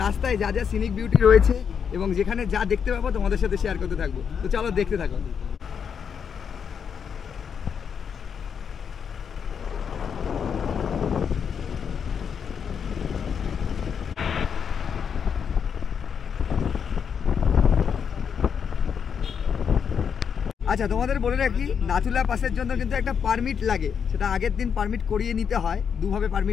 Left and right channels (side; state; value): right; quieter; 7.1 dB